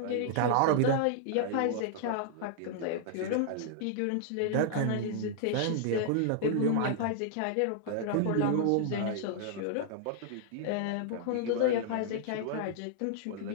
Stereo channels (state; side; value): different; both; correlation -0.01